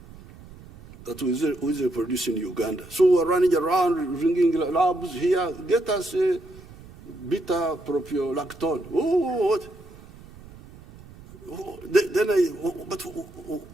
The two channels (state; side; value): noise; right; rumble, 20 dB below the sound